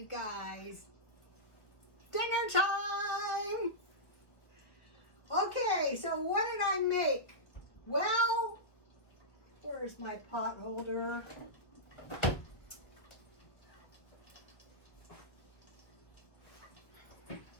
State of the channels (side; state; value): right; late; 1.3 ms